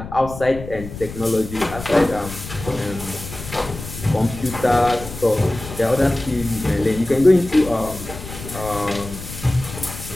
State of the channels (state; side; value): noise; left; rumble, 12 dB below the sound